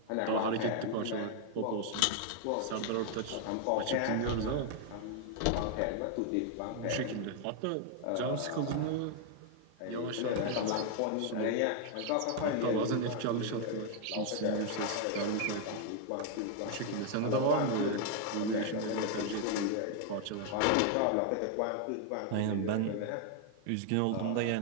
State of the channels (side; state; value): both; different; correlation 0.00